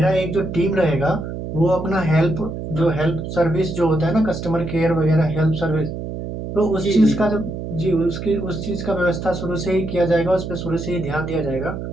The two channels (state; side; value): noise; right; hum, 7 dB below the sound